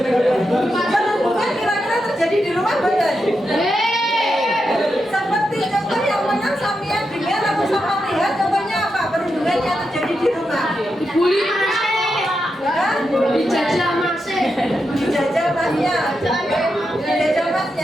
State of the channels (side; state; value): both; normal; correlation 0.86